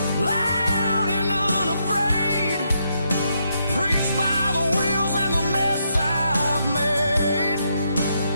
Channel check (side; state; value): both; inverted; correlation -0.79